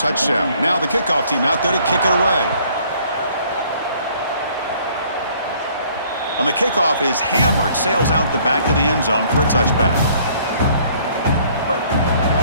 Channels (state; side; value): inverted; both; correlation -0.59